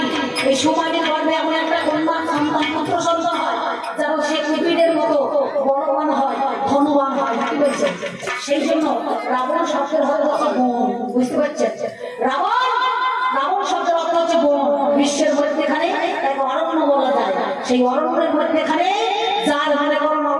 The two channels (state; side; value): identical; both; correlation 1.00